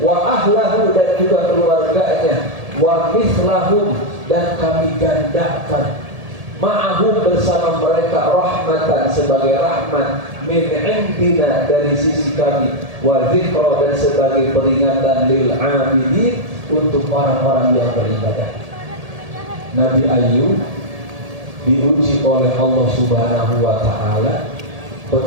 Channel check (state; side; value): late; left; 1.7 ms